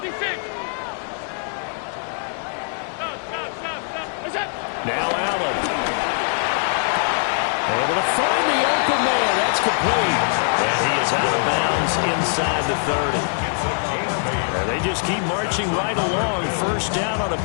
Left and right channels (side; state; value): right; silent; 64 dB below the other